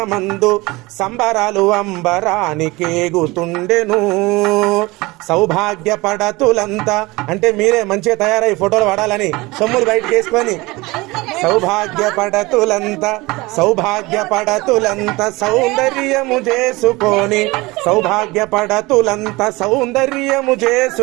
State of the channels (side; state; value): left; quieter; 22.2 dB